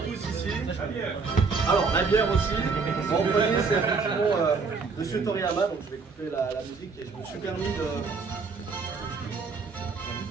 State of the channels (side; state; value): left; quieter; 4.7 dB